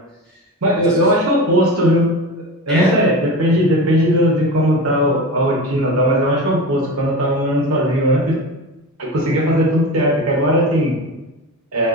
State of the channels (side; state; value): both; normal; correlation 0.27